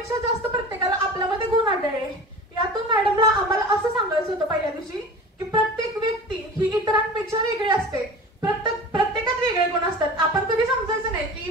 जास्त प्रत्येकाला आपल्यामध्ये गुण आढळले. यातून मॅडमला आम्हाला असं सांगायचं होतं पहिल्या दिवशी की प्रत्येक व्यक्ती ही इतरांपेक्षा वेगळी असते. प्रत्येकात वेगळे गुण असतात. आपण कधी समजायचं नाही की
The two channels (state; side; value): normal; both; correlation 0.36